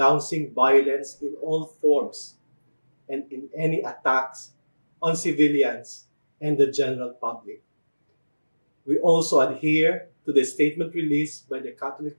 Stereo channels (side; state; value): both; inverted; correlation -1.00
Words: violence in all forms and in any attacks on civilians and the general public. We also adhere to the statement released by the Catholic